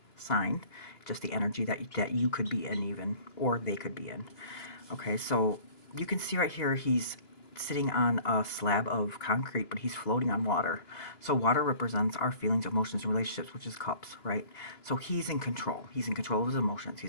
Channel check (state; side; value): late; right; 2.9 ms